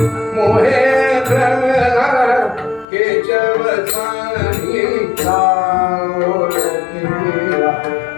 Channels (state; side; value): drops out; right; at 2.9 s